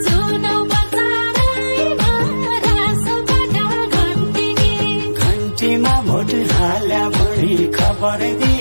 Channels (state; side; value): inverted; both; correlation -1.00